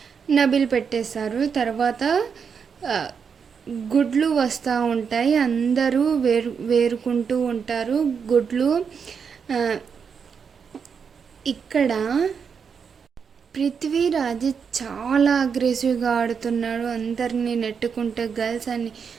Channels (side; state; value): left; quieter; 6.4 dB